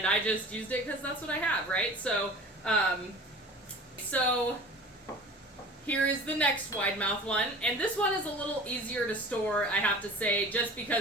I just used it because that's what I have, right? So here is the next wide mouth one, and this one is a little easier to store, I have to say, just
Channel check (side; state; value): both; normal; correlation 0.41